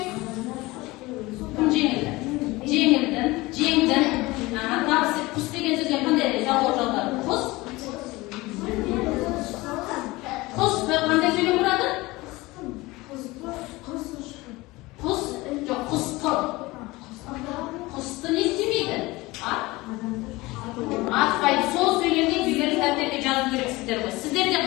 Кім жеңілді? Жеңдің. Табыс септік. Құс деген сөзге қандай жалғау жалғады? Құс қандай сөйлем құрады? Құс, жоқ, құсты. Құсты не істемейді? Атпайды. Сол сөйлемде үйлері тәптерге жазу керексіздер ғой. Сіздерде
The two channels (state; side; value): quieter; right; 21.1 dB